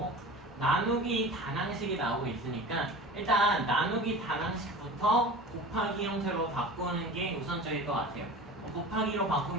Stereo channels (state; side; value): normal; both; correlation 0.36